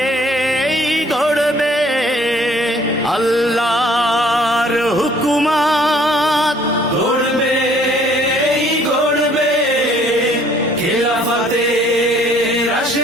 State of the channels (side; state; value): both; normal; correlation 0.59